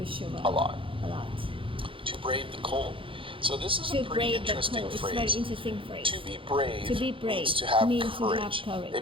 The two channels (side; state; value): left; late; 0.25 ms